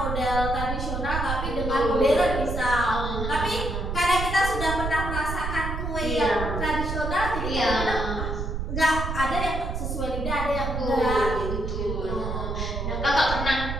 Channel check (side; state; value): right; noise; rumble, 3 dB below the sound